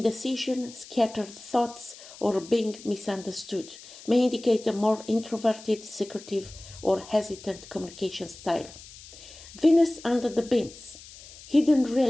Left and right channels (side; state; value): left; noise; hiss, 18 dB below the sound